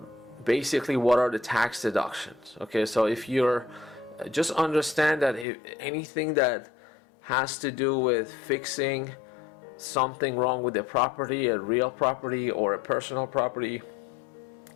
basically what are the tax deductions. Okay, so if you're just understand that if anything that has to do with fixing something wrong with the property, a real property or a personal property,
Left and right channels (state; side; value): drops out; right; at 5.5 s